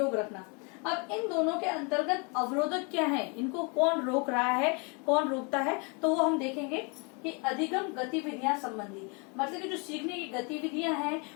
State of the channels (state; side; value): quieter; right; 33.2 dB